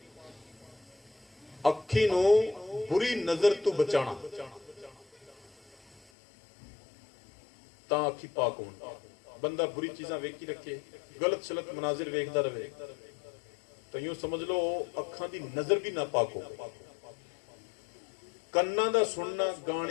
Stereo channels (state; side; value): drops out; right; at 6.0 s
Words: ਅੱਖੀ ਨੂੰ ਬੁਰੀ ਨਜ਼ਰ ਤੋਂ ਬਚਾਣਾ ਤਾਂ ਅੱਖੀ ਪਾਕ ਹੋਣ। ਬੰਦਾ ਬੁਰੀ ਚੀਜ਼ਾਂ ਵੇਖੀ ਰੱਖੇ, ਗਲਤ ਸ਼ਲਤ ਮਨਾਜ਼ਰ ਵੇਖਦਾ ਰਵੇ ਤਾਂ ਯੂੰ ਸਮਝ ਲਓ ਅੱਖਾਂ ਦੀ ਨਜ਼ਰ ਵੀ ਨਾ ਪਾਕ ਹੋ। ਕੰਨਾਂ ਦਾ ਸੁਣਨਾ,